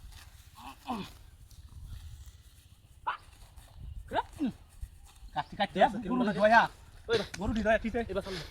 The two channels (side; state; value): both; identical; correlation 1.00